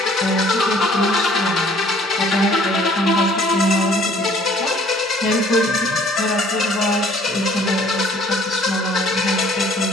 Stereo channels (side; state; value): both; normal; correlation 0.57